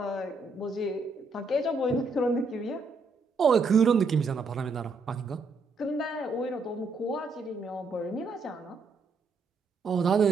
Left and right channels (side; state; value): left; quieter; 3.7 dB